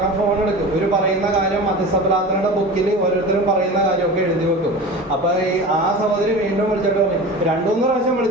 ഫോൺ എടുക്കും. ഒരു പറയുന്ന കാര്യം മധ്യസ്ഥപ്രാർത്ഥനയുടെ ബുക്കിൽ ഓരോരുത്തരും പറയുന്ന കാര്യമൊക്കെ എഴുതി വെക്കും. അപ്പോൾ ആ സഹോദരി വീണ്ടും വിളിച്ചിട്ട് 2-3 പ്രാവശ്യം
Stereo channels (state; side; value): normal; both; correlation 0.33